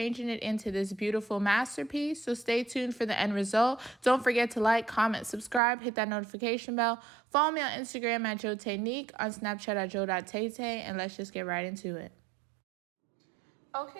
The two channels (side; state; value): left; drops out; at 5.6 s